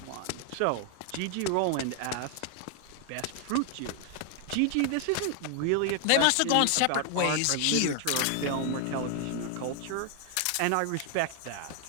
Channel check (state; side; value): different; both; correlation 0.00